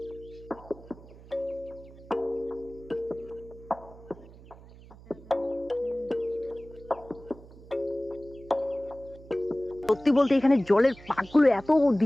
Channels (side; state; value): right; noise; hum, 20 dB below the sound